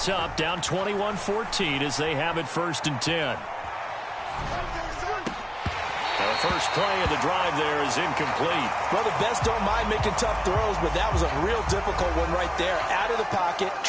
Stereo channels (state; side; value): identical; both; correlation 1.00